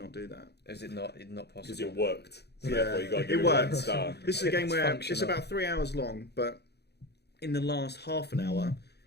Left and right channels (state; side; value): late; right; 0.48 ms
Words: do that. Is it not possible? Because it worked. So Yeah, therefore you got to give it it one worked. star. This is a game It's where functional. it's about 3 hours long, but in the last half an hour,